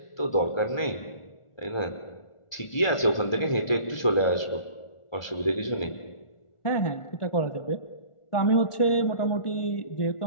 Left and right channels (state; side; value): late; right; 1.4 ms